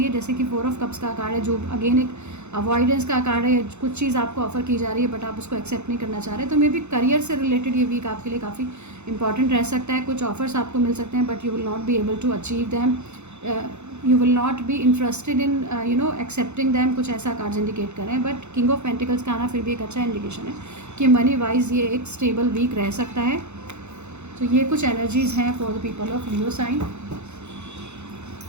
जैसे कि फोर ऑफ कप्स का कार्ड है जो अगेन एक अवॉइडेंस का कार्ड है. कुछ चीज़ आपको ऑफर की जा रही है बट आप उसको एक्सेप्ट नहीं करना चाह रहे. तो मे बी करियर से रिलेटेड ये वीक आपके लिए काफ़ी इंपॉर्टेंट रह सकता है. कुछ ऑफर्स आपको मिल सकते हैं but you will not be able to achieve them. You will not be interested in accepting them. कुछ ऐसा कार्ड्स इंडिकेट कर रहे हैं. बट किंग ऑफ पेंटिकल्स का आना फिर भी एक अच्छा इंडिकेशन है कि मनी वाइज ये एक स्टेबल वीक रह सकता है. तो ये कुछ एनर्जीज़ हैं for the people of Leo sign.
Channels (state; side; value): late; left; 0.82 ms